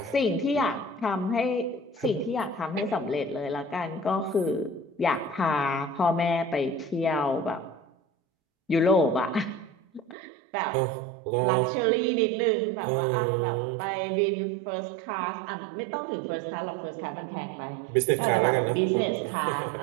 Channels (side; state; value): left; drops out; at 10.2 s